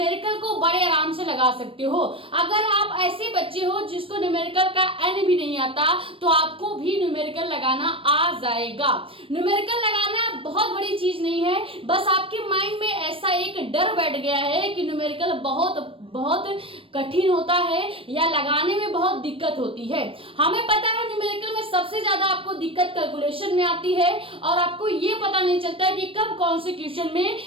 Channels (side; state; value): left; late; 0.26 ms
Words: को बड़े आराम से लगा सकते हो। अगर आप ऐसे बच्चे हो जिसको न्यूमेरिकल का एन भी नहीं आता तो आपको भी न्यूमेरिकल लगाना आ जाएगा। न्यूमेरिकल लगाना बहुत बड़ी चीज नहीं है, बस आपके माइंड में ऐसा एक डर बैठ गया है कि न्यूमेरिकल बहुत कठिन होता है या लगाने में बहुत दिक्कत होती है। हमें पता है न्यूमेरिकल में सबसे ज्यादा आपको दिक्कत कैलकुलेशन में आती है और आपको ये पता नहीं चलता है कि कब कौन से क्वेश्चन